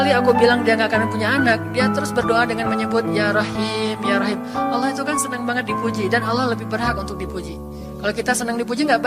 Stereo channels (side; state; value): both; identical; correlation 1.00